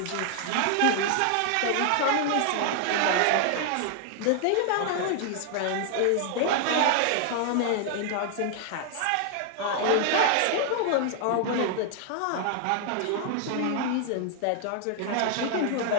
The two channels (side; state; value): both; different; correlation 0.00